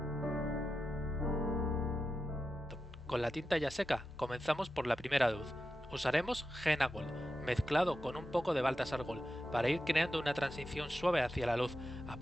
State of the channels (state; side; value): normal; both; correlation 0.90